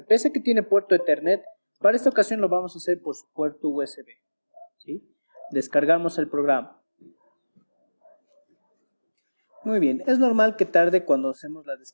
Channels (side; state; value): both; inverted; correlation -1.00